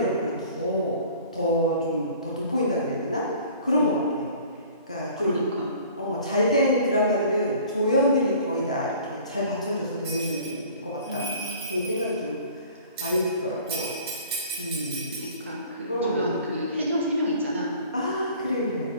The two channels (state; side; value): inverted; both; correlation -0.48